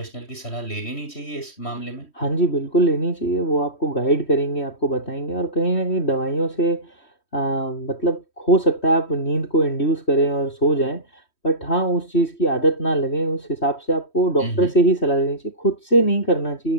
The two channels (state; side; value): late; right; 3.1 ms